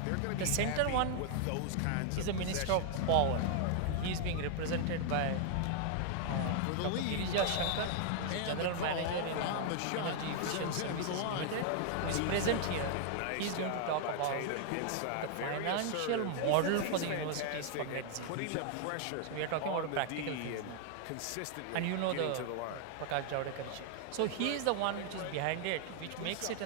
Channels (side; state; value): both; different; correlation 0.00